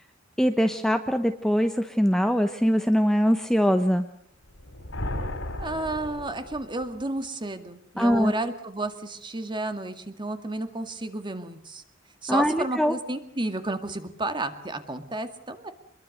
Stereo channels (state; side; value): normal; both; correlation 0.86